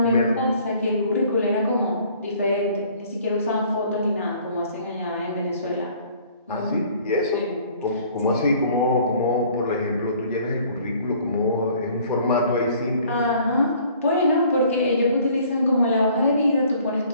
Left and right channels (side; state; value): both; inverted; correlation -0.56